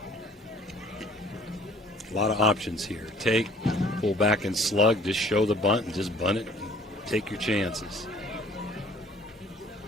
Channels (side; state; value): both; normal; correlation 0.54